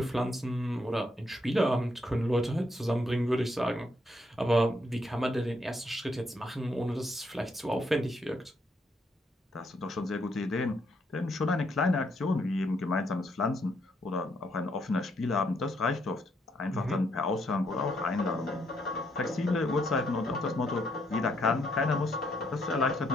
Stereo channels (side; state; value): both; normal; correlation 0.74